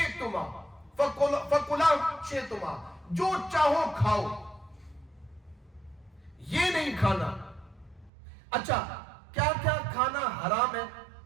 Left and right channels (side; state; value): left; drops out; at 8.1 s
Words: فکلا شئتما، جو چاہو کھاؤ، یہ نہیں کھانا. اچھا، کیا کیا کھانا حرام ہے؟